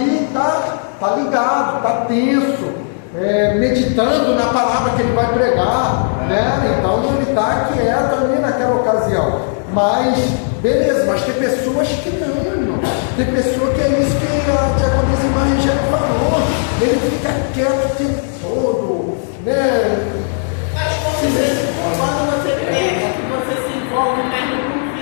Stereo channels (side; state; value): right; silent; 69 dB below the other